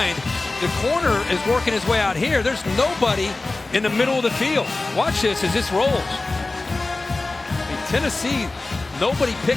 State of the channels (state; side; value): quieter; right; 3.2 dB